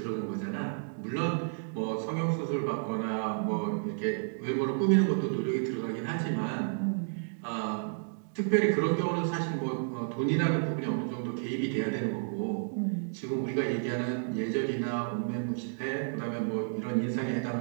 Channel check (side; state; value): left; silent; digital silence